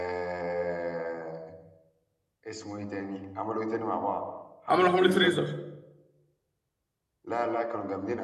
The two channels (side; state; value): both; identical; correlation 1.00